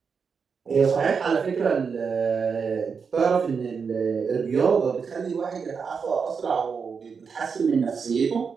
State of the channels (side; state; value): left; quieter; 5.8 dB